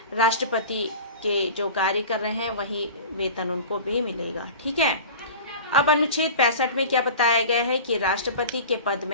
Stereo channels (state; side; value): inverted; both; correlation -0.37